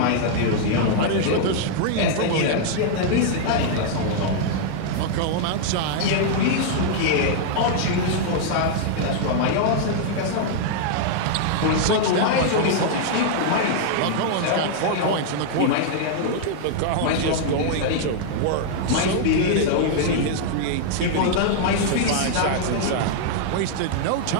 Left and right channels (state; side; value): different; both; correlation -0.01